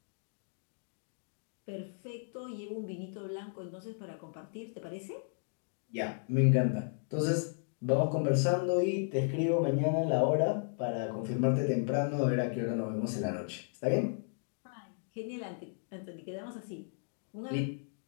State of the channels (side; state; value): right; silent; digital silence